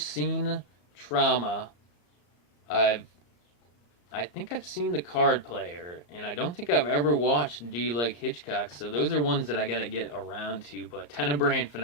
Trauma. I think I've seen The Card Player, and I don't think I've ever watched Do You Like Hitchcock, so those are ones that I gotta get around to. But Tenebrae and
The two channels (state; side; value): late; right; 34 ms